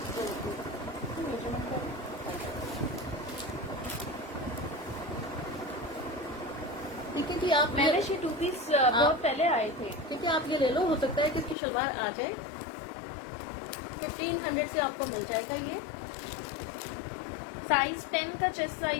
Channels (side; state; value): right; drops out; at 11.6 s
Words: ठीक है कि आप मैंने ये 2 पीस बहुत पहले आए थे। ठीक है, आप ये ले लो। हो सकता है कि इसकी शलवार आ जाए। 1500 से आपको मिल जाएगा ये। साइज 10 का चेस्ट